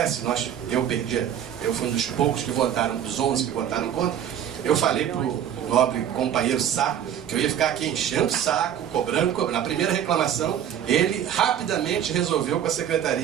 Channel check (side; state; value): left; quieter; 9.7 dB